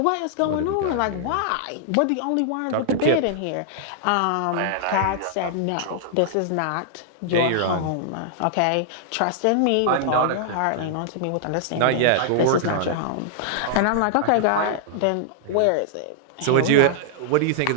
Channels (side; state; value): both; different; correlation -0.01